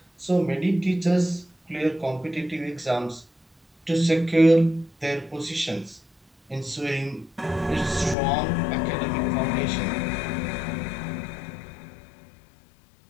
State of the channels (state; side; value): drops out; right; at 8.2 s